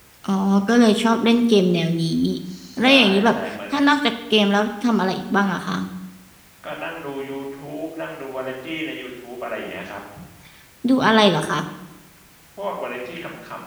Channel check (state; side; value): identical; both; correlation 1.00